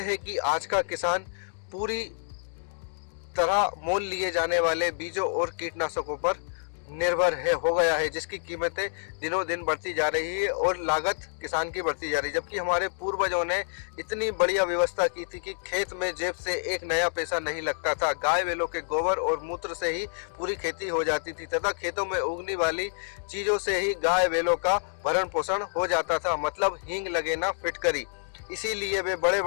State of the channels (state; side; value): silent; right; digital silence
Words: है कि आज का किसान पूरी तरह मोल लिए जाने वाले बीजों और कीटनाशकों पर निर्भर हो गया है, जिसकी कीमतें दिनों दिन बढ़ती जा रही है और लागत किसान की बढ़ती जा रही है। जबकि हमारे पूर्वजों ने इतनी बढ़िया व्यवस्था की थी कि खेत में जेब से एक नया पैसा नहीं लगता था। गाय बैलों के गोबर और मूत्र से ही पूरी खेती हो जाती थी तथा खेतों में उगने वाली चीजों से ही गाय बैलों का भरण पोषण हो जाता था, मतलब हींग लगे ना फिटकरी। इसीलिए वे बड़े